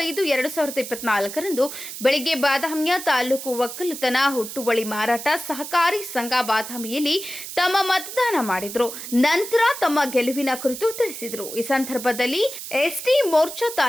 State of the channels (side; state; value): right; noise; hiss, 9 dB below the sound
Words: ರಂದು ಬೆಳಗ್ಗೆ ಬಾದಾಮಿಯ ತಾಲೂಕು ಒಕ್ಕಲುತನ ಹುಟ್ಟುವಳಿ ಮಾರಾಟ ಸಹಕಾರಿ ಸಂಘ ಬಾದಾಮಿಯಲ್ಲಿ ತಮ್ಮ ಮತದಾನ ಮಾಡಿದರು. ನಂತರ ತಮ್ಮ ಗೆಲುವಿನ ಕುರಿತು ತಿಳಿಸಿದರು. ಈ ಸಂದರ್ಭದಲ್ಲಿ ಎಸ್ಟಿ ಮೋರ್ಚಾ